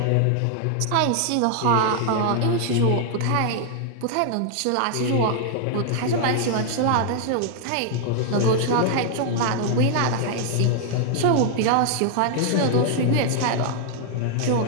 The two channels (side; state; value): both; different; correlation 0.00